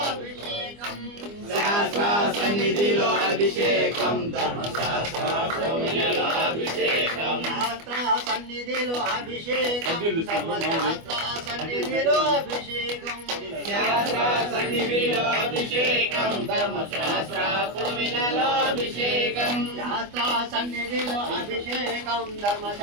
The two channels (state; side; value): late; left; 25 ms